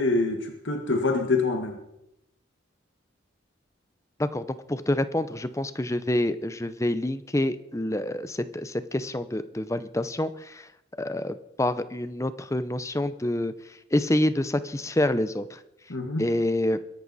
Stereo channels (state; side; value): normal; both; correlation 0.73